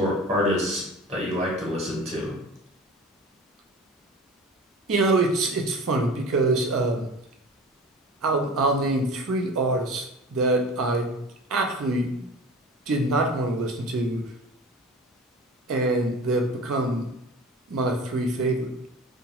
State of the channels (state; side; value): normal; both; correlation 0.36